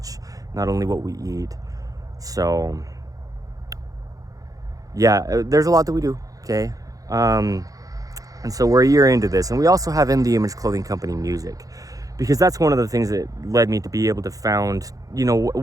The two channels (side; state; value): left; late; 0.17 ms